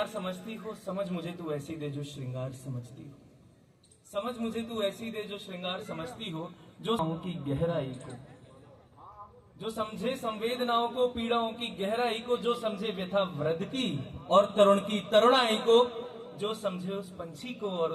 समझती हो, समझ मुझे तू ऐसी दे जो श्रृंगार समझती हो, समझ मुझे तू ऐसी दे जो श्रृंगार समझती हो, जो की गहराई को, जो समझे संवेदनाओं को, पीड़ाओं की गहराई को, जो समझे व्यथा वृद्ध की और तरुण की तरुणाई को, जो समझे उस पंछी को और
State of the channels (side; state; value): both; identical; correlation 1.00